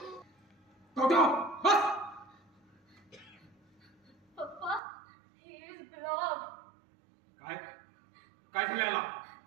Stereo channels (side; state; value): left; drops out; at 4.8 s